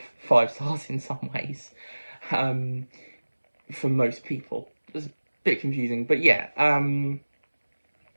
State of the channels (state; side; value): inverted; both; correlation -1.00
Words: 5 stars in some ways, um, for most people. It's a bit confusing, but yeah,